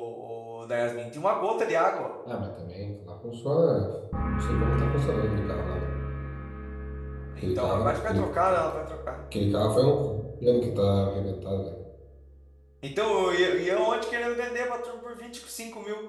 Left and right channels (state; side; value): identical; both; correlation 1.00